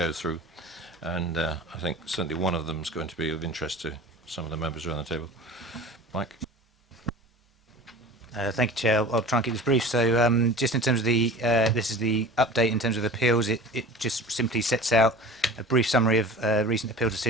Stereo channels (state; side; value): normal; both; correlation 0.38